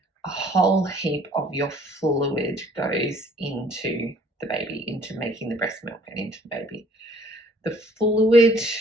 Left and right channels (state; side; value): normal; both; correlation 0.58